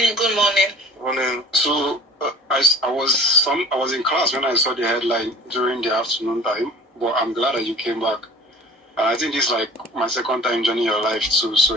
good morning. Morning. So, I was in class when I saw the headline during the afternoon time, but I'm glad that you came back. And I think this is like my second time joining your life too. So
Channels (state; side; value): normal; both; correlation 0.45